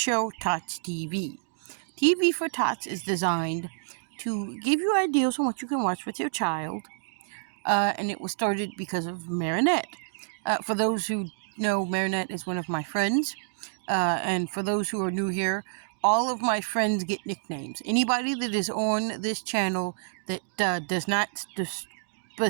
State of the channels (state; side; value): silent; left; digital silence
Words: Tots TV. TV for Tots is designed to give you ideas on what you can watch with your child, and it was started because of Marinette. For those who know, Marinette is one of my friends, and for those who are new here, all of my friends get nicknames. Anybody that is on this channel that does not